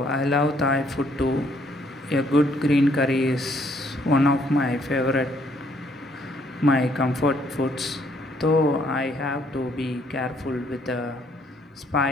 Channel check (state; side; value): normal; both; correlation 0.67